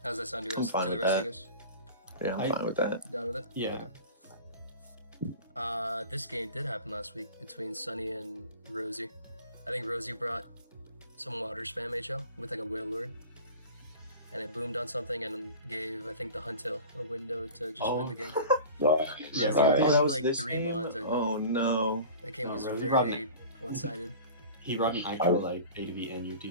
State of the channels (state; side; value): inverted; both; correlation -0.38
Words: How's that sound to I'm fine the with rest of that. you guys? Yeah, I'm fine with that. Down with it? Yeah. Okay. This game did happen last week between Sunny and Rosie. I think Rosie brought some water spam HL with like a whale lord. And it boomed on something and gave, I think, the Huntail a window to just win the game. Right. Rosie Right. had that was like this 3 game? mons, I think. Oh no. That game was Rosie very one-sided. He brought an actual like ADV NU